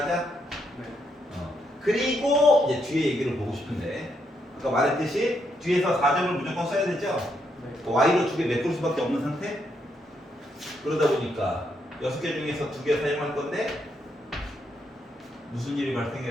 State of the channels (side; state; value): both; normal; correlation 0.78